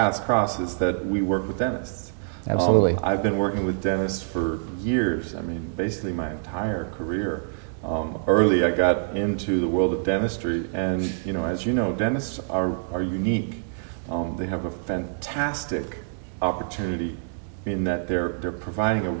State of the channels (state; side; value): silent; left; digital silence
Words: cross, is that we work with dentists. Absolutely. I've been working with dentists for years. I mean, basically my entire career. Early, I got into the world of dentistry, and as you know, dentists are unique. They have a fantastic opportunity in that they're providing a